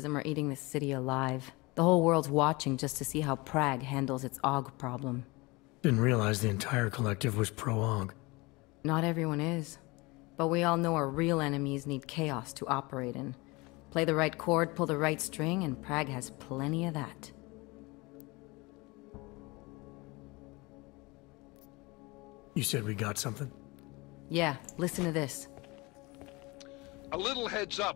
are eating this city alive. The whole world's watching just to see how Prague handles its AUG problem. Didn't realize the entire collective was pro-AUG. Not everyone is. But we all know our real enemies need chaos to operate in. Play the right chord, pull the right string, and Prague has plenty of that. You said we got something? Yeah, listen to this. A little heads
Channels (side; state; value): right; quieter; 24.6 dB